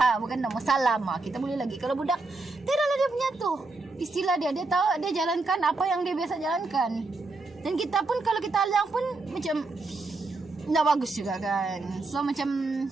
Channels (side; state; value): left; quieter; 3.4 dB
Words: bukan nama salam kita boleh lagi. Kalau budak tidaklah dia punya tu istilah dia tahu, dia jalankan apa yang dia biasa jalankan. Dan kita pun kalau kita alang pun macam tak bagus juga kan. So macam